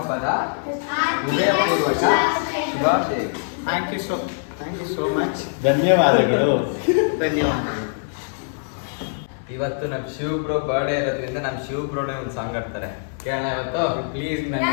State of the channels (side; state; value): right; silent; digital silence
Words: ಹೃದಯಪೂರ್ವಕ ಶುಭಾಶಯಗಳು. Thank you so much. ಧನ್ಯವಾದಗಳು. ಧನ್ಯವಾದಗಳು. ಇವತ್ತು ನಮ್ಮ ಶಿವ್ ಬ್ರೋ ಬರ್ಡೇ ಇರೋದ್ರಿಂದ ನಮ್ಮ ಶಿವ್ ಬ್ರೋನೇ ಒಂದು ಸಾಂಗ್ ಆಡ್ತಾರೆ, ಕೇಳೋಣ ಇವತ್ತು? ಪ್ಲೀಸ್, ನನ್ನ